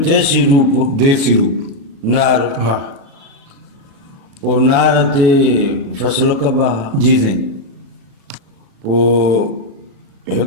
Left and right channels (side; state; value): left; late; 36 ms